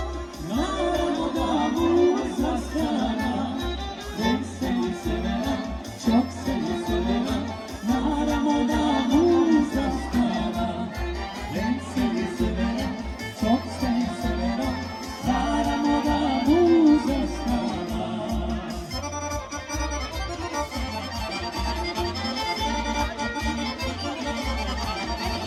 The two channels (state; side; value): identical; both; correlation 1.00